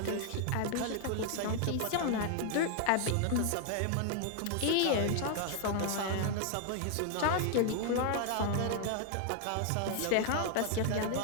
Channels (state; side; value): different; both; correlation 0.00